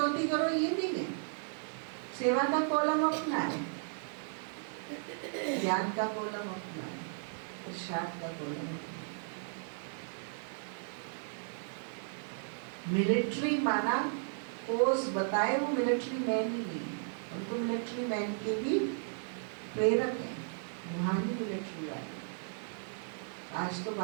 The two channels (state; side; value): silent; left; digital silence